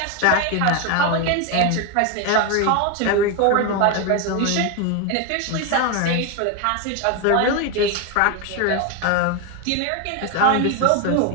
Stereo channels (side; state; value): both; different; correlation 0.02